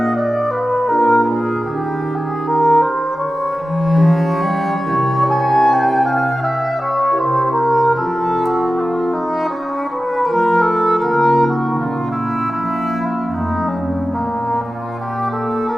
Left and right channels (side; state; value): both; normal; correlation 0.95